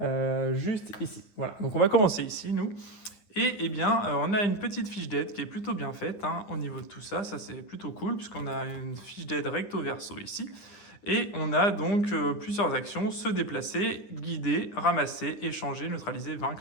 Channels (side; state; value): right; late; 9.8 ms